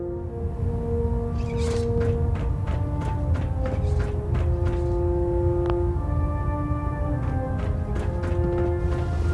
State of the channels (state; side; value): identical; both; correlation 1.00